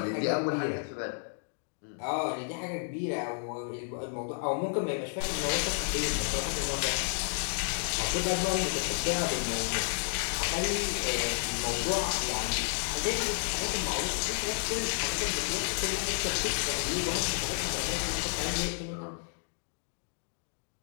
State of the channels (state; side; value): silent; right; digital silence